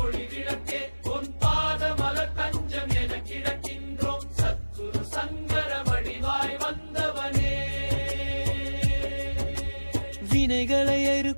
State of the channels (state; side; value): inverted; both; correlation -1.00